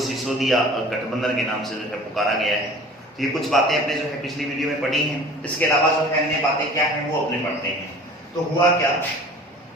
गठबंधन के नाम से जो है पुकारा गया है। तो ये कुछ बातें अपने जो है पिछली वीडियो में पढ़ी हैं। इसके अलावा जो है अन्य बातें क्या हैं वो अपने पढ़ते हैं। तो हुआ क्या,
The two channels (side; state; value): both; normal; correlation 0.44